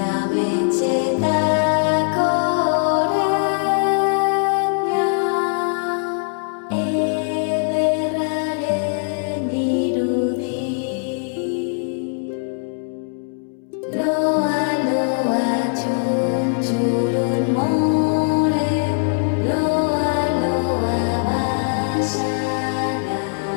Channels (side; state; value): right; silent; digital silence